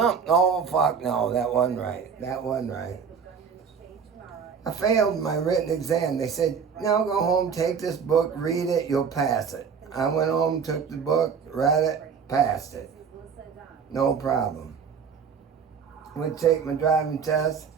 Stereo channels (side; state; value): left; quieter; 6.4 dB